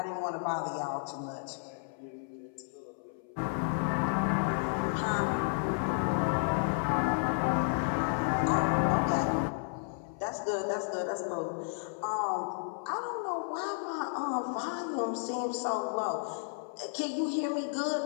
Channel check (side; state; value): right; silent; 56 dB below the other